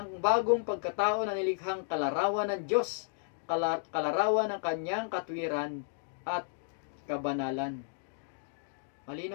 bagong pagkatao na nilikhang kalarawan ng Diyos, kalarawan ng kanyang katwiran at kabanalan.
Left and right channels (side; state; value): right; silent; digital silence